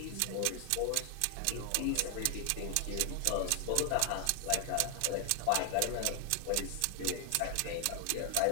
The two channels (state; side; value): different; both; correlation 0.00